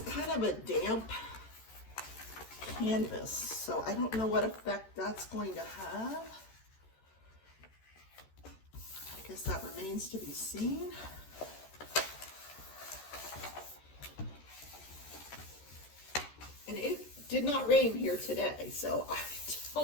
kind of a damp canvas. So I don't know what effect that's going to have. I guess that remains to be seen. And it did not rain here today, so I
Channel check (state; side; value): late; right; 13 ms